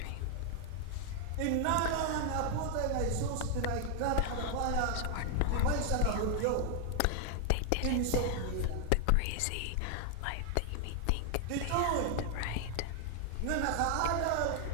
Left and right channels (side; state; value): both; different; correlation 0.00